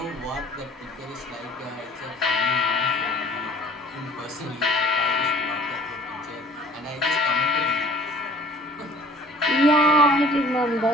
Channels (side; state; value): both; normal; correlation 0.50